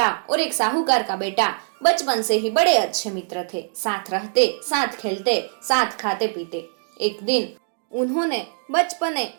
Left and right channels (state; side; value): silent; left; digital silence